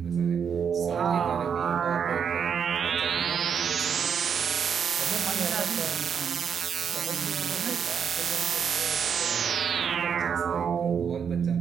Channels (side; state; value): left; quieter; 7.2 dB